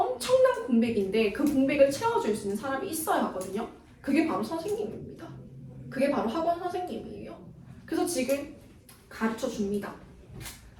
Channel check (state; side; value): identical; both; correlation 1.00